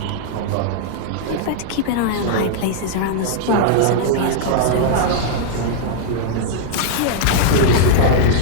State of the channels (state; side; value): different; both; correlation -0.01